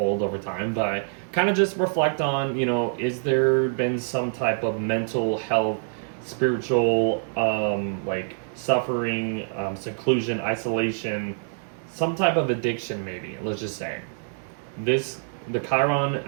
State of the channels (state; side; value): silent; left; digital silence